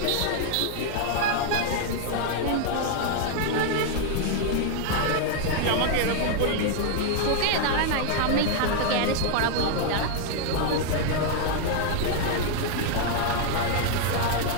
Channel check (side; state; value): both; different; correlation 0.00